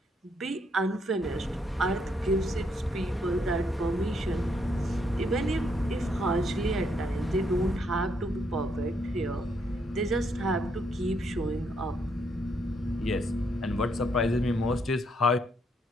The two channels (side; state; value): both; normal; correlation 0.74